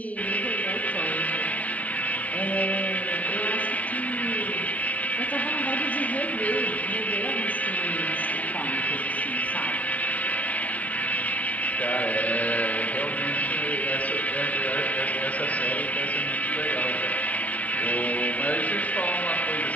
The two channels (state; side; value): late; right; 0.070 ms